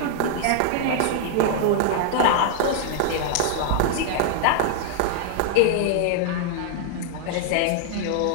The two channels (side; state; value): both; different; correlation 0.00